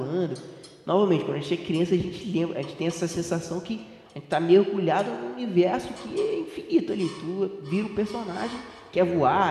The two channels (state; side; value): identical; both; correlation 1.00